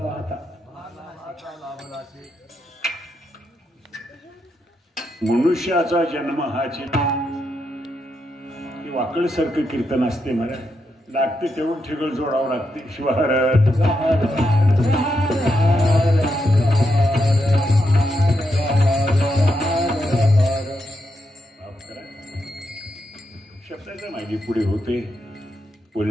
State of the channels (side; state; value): both; normal; correlation 0.83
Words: मनुष्याचा जन्म हा वाकळसारखं कीर्तन असते मला लागते तेवढं ठिगळ जोडावं लागते. शिवार शब्दाच्या मागे पुढे होते,